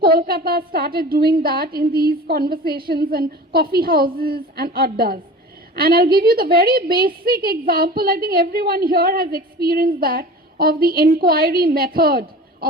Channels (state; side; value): normal; both; correlation 0.38